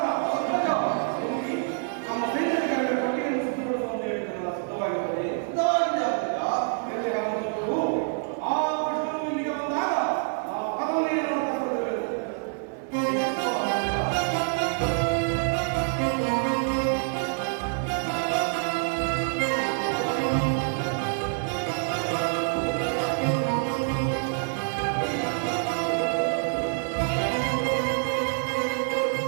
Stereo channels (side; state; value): left; silent; 59 dB below the other